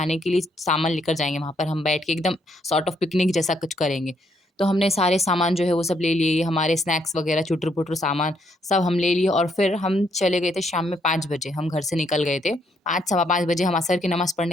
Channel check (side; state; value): both; normal; correlation 0.73